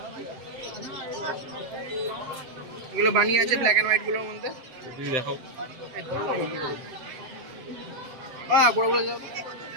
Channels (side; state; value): left; late; 7.8 ms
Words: এগুলো বানিয়ে আছে ব্ল্যাক এন্ড হোয়াইট গুলোর মধ্যে। যদি দেখাও। হ্যাঁ বড় বড় যাও।